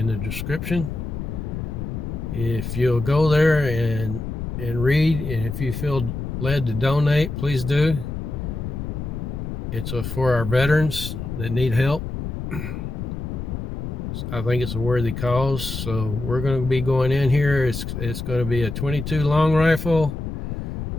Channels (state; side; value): noise; left; rumble, 5 dB below the sound